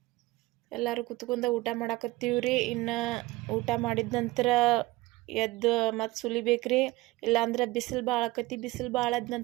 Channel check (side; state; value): left; quieter; 20.1 dB